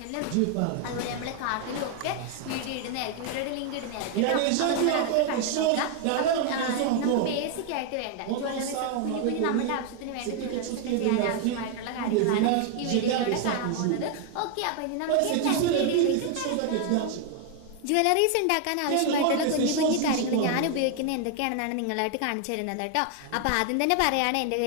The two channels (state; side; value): different; both; correlation 0.00